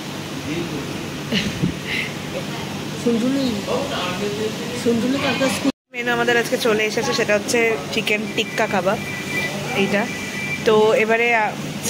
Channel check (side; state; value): both; identical; correlation 1.00